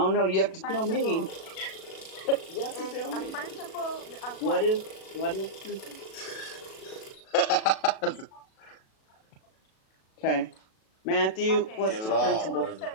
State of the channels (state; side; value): late; right; 37 ms